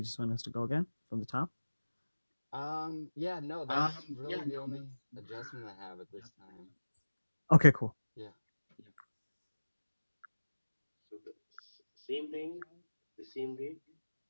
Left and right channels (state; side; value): inverted; both; correlation -1.00